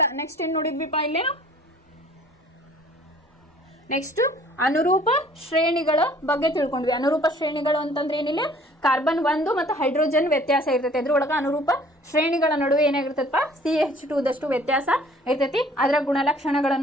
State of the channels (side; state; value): both; normal; correlation 0.54